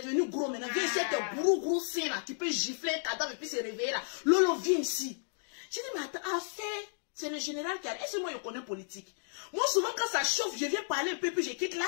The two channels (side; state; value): right; silent; digital silence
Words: gros maintenant. Viens essayer tes gros seins là. Tu peux gifler un cadavre et puis se réveiller là. Lolo, viens ici. J'ai dit, mais attends, c'est le général qui a... Est-ce que moi je connais politique? Moi, souvent, quand ça chauffe, je viens parler un peu, puis je quitte là.